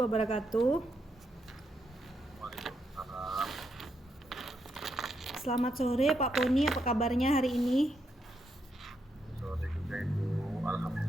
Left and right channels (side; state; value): both; normal; correlation 0.80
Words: Waalaikumsalam. Selamat sore Pak Poni, apa kabarnya hari ini? Sore juga Ibu.